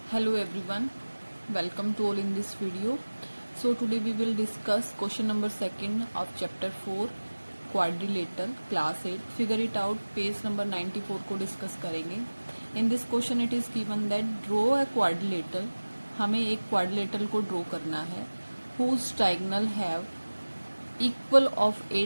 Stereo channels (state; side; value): inverted; both; correlation -1.00